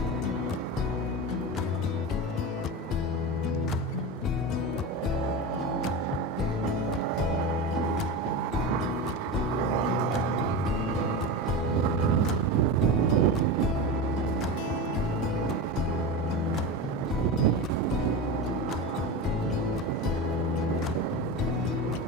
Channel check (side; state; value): both; normal; correlation 0.23